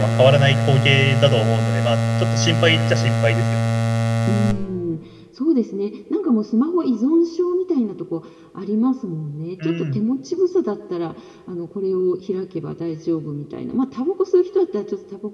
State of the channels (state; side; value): identical; both; correlation 1.00